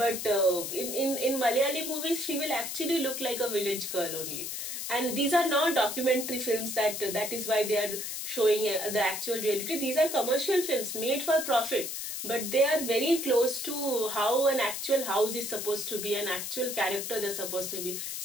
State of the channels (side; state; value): left; noise; hiss, 5 dB below the sound